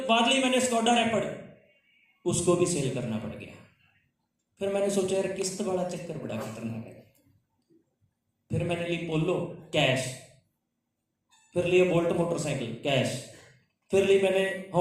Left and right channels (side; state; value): both; identical; correlation 1.00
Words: बाद ली मैंने स्कोडा रैपिड, उसको भी सेल करना पड़ गया। फिर मैंने सोचा यार किस्त वाला चक्कर बड़ा खतरनाक है। फिर मैंने ली पोलो कैश, फिर लिया बोल्ट मोटरसाइकिल कैश, फिर ली मैंने